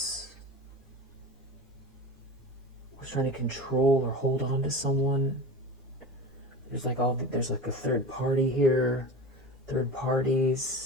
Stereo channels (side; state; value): both; normal; correlation 0.32